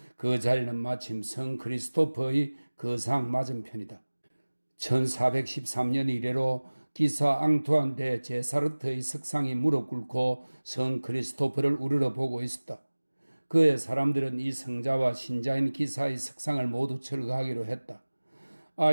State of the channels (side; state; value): both; inverted; correlation -1.00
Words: 그 자리는 마침 성 크리스토퍼의 거상 맞은편이다. 1413년 이래로 기사 앙투안 대 제사르트의 석상이 무릎 꿇고 성 크리스토퍼를 우러러 보고 있었다. 그의 사람들은 이 성자와 신자인 기사의 석상을 모두 철거하기로 했다.